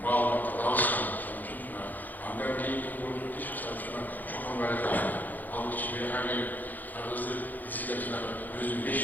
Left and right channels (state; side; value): late; right; 0.084 ms